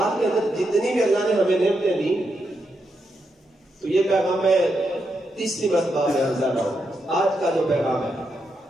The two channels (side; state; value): both; normal; correlation 0.83